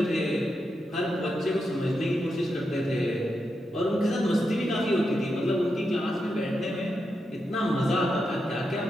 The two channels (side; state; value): both; normal; correlation 0.86